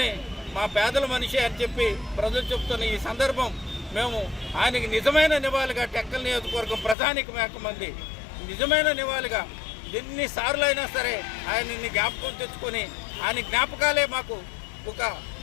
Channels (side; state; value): right; drops out; at 7.0 s